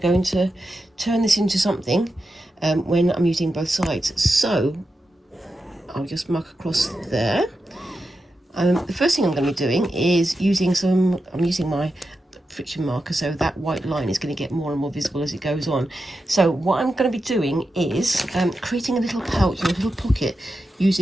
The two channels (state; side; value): normal; both; correlation 0.89